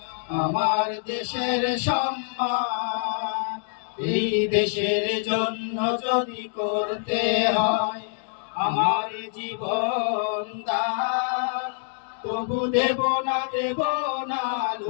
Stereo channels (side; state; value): right; silent; digital silence